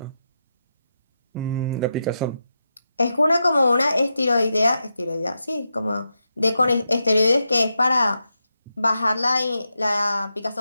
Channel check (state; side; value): inverted; both; correlation -0.87